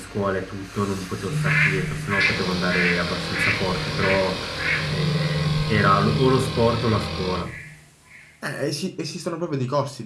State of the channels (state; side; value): identical; both; correlation 1.00